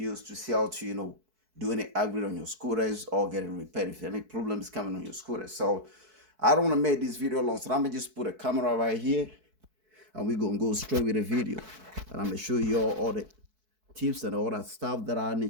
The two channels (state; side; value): late; left; 4.6 ms